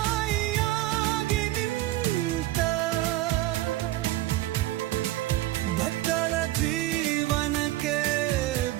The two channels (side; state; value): left; quieter; 16.2 dB